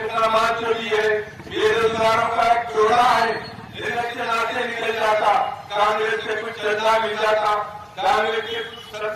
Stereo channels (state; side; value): identical; both; correlation 1.00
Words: जो भी है, बेरोजगारों का एक जोड़ा है। इलेक्शन आते निकल जाता, कांग्रेस से कुछ चंदा मिल जाता, कांग्रेस की